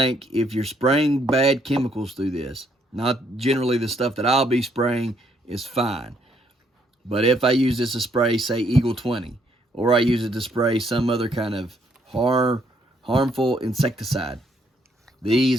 if you're spraying bad chemicals through this, not generally the stuff that I'll be spraying is fine. But if I use this to spray, say, Eagle 20, or I use it to spray some other kind of harmful insecticide,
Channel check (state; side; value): normal; both; correlation 0.70